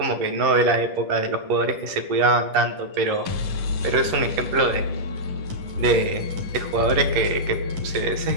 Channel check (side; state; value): left; late; 10 ms